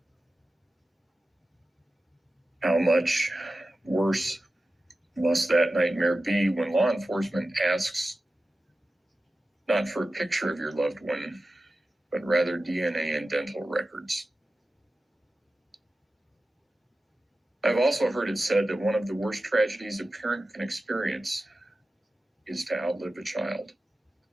How much worse must that nightmare be when law enforcement asks not for a picture of your loved one, but rather DNA and dental records? I've also heard it said that one of the worst tragedies a parent can experience is to outlive a child.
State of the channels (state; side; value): normal; both; correlation 0.94